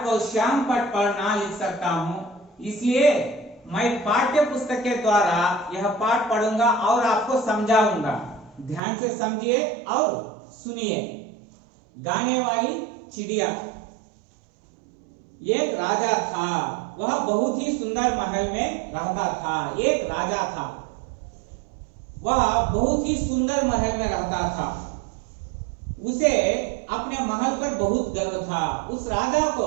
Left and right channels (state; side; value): drops out; left; at 8.8 s